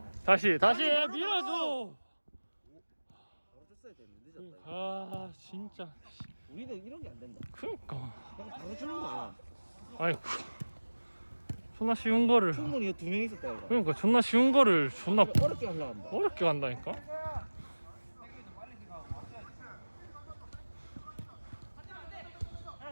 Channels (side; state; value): both; inverted; correlation -1.00